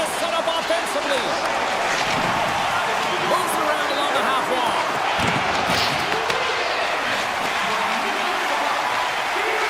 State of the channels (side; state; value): both; identical; correlation 1.00